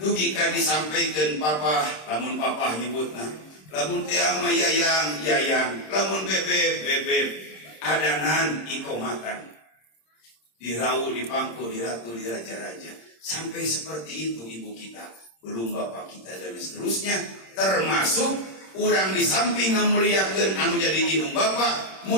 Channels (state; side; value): late; right; 26 ms